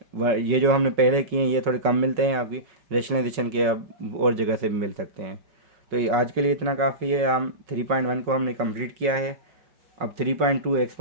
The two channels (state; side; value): late; left; 5.4 ms